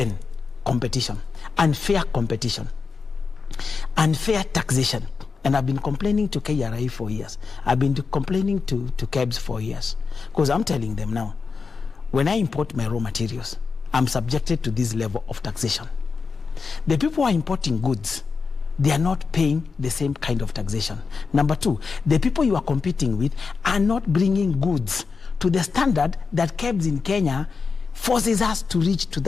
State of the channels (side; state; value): right; quieter; 4.9 dB